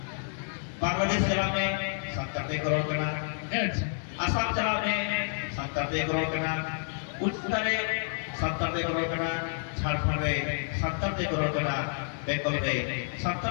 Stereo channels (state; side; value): silent; right; 58 dB below the other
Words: Bangladesh jala mein santar te korona kana Assam जला में 70 करोड़ कना उत्तरे 70 करोड़ कना झारखंड रे 70 करोड़ कना बेंगल रे